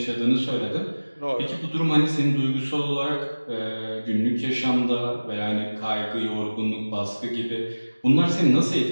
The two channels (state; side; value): inverted; both; correlation -1.00